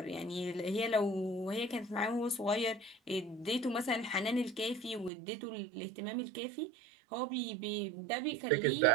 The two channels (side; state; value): left; drops out; at 5.1 s